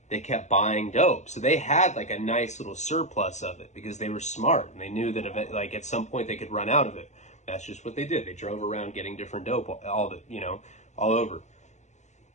They kept buying dope. So they had, like, a nice little surplus of it because they were smart, and they knew that, like, at some point they could run out of it. That's just what they did. They drove around getting different dope all over.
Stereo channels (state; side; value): late; right; 0.34 ms